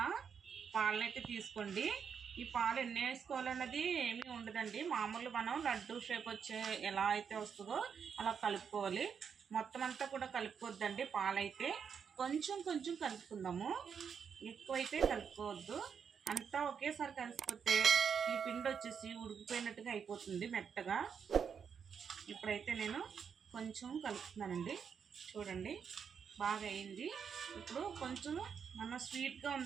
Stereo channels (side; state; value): left; quieter; 6.9 dB